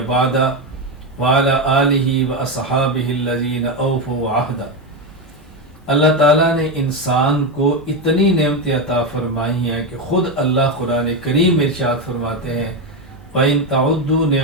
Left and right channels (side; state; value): both; normal; correlation 0.11